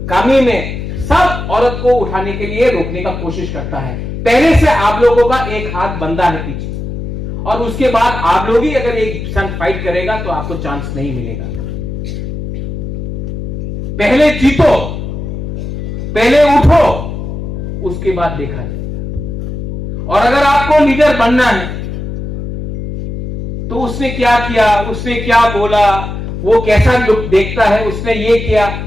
कामी में, सब औरत को उठाने के लिए रोकने का कोशिश करता है। पहले से आप लोगों का एक हाथ बंधा है पीछे, और उसके बाद आप लोग ही अगर एक संग फाइट करेगा तो आपको चांस नहीं मिलेगा। पहले जीतो, पहले उठो, उसके बाद देखा जाएगा। और अगर आपको लीडर बनना है तो उसने क्या किया, उसने क्या बोला, वो कैसा लुक देखता है, उसने ये किया,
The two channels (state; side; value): noise; left; hum, 6 dB below the sound